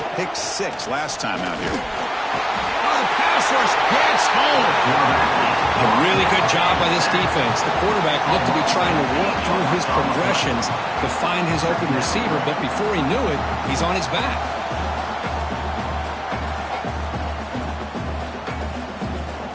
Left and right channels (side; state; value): both; identical; correlation 1.00